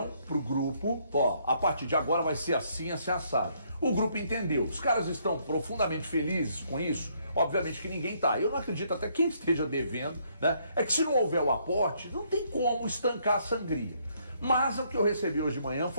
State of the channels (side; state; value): both; inverted; correlation -0.69